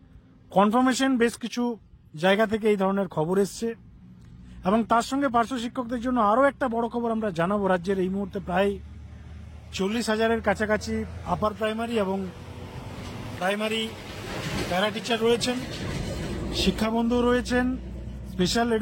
কনফার্মেশন বেশ কিছু জায়গা থেকে এই ধরনের খবর এসছে, এবং তার সঙ্গে পার্শ্ব শিক্ষকদের জন্য আরও একটা বড় খবর আমরা জানাবো। রাজ্যের এই মুহূর্তে প্রায় 40,000-এর কাছাকাছি আপার প্রাইমারি এবং প্রাইমারি প্যারা টিচার রয়েছেন, শিক্ষাবন্ধু রয়েছেন, স্পেশাল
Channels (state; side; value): identical; both; correlation 1.00